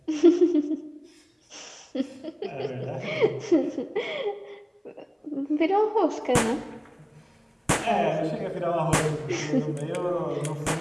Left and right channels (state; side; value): identical; both; correlation 1.00